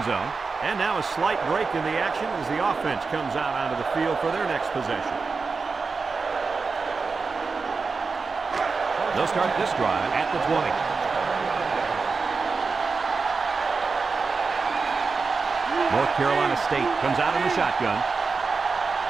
zone. And now a slight break in the action as the offense comes out onto the field for their next possession. They'll start this drive at the 20. North Carolina State comes out in the shotgun.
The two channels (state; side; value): quieter; left; 4.6 dB